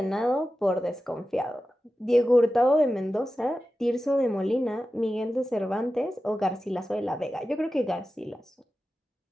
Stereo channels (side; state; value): both; normal; correlation 0.93